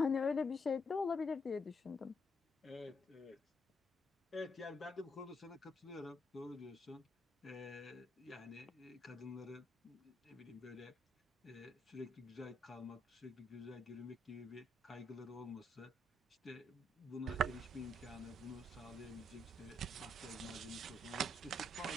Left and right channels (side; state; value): both; normal; correlation 0.77